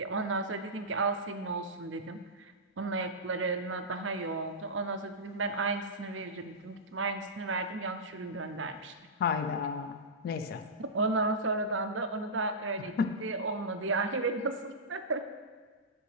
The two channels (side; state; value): both; normal; correlation -0.14